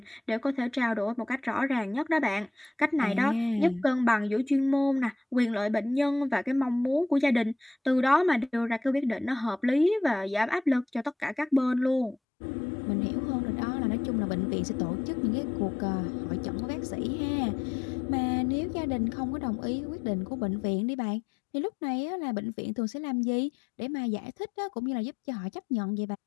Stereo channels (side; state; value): right; drops out; at 12.2 s